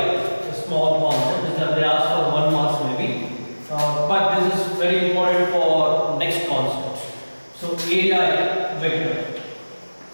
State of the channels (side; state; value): both; inverted; correlation -1.00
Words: a small concept. They ask for 1 marks maybe, but this is very important for next concept. So area vector.